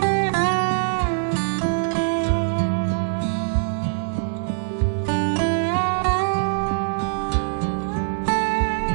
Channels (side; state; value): left; silent; 56 dB below the other